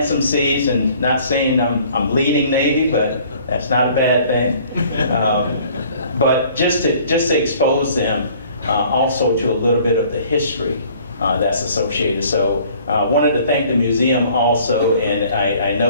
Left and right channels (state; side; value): inverted; both; correlation -0.55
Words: some seeds, and not saying I'm leading Navy, but that's not a bad thing. But just to expose them also to a little bit of the history that's associated. So wanted to thank the museum also, and I